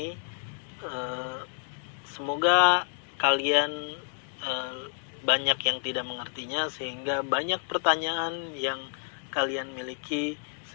Semoga kalian banyak yang tidak mengertinya, sehingga banyak pertanyaan yang kalian miliki,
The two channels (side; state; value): right; silent; 58 dB below the other